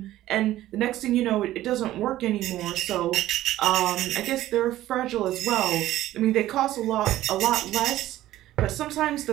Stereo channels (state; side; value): quieter; left; 14.5 dB